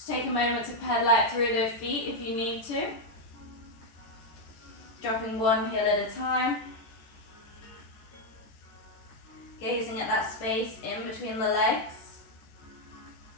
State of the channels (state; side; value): late; right; 14 ms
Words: take a moment to pedal out through those feet if you need to. Dropping one heel at a time. Gazing at that space in between the legs.